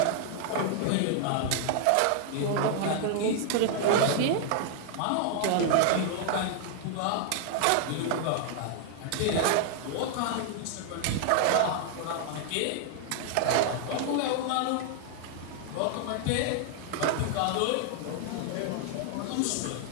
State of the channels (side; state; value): both; different; correlation 0.00